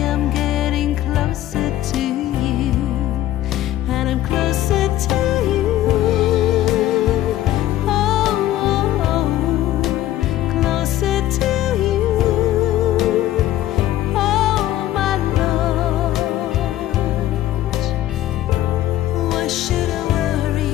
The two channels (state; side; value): quieter; right; 13.7 dB